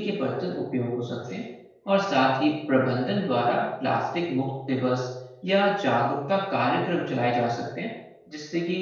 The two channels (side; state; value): both; identical; correlation 1.00